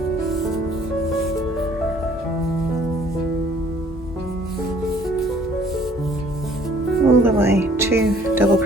All the way, 2 double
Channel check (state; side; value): normal; both; correlation 0.58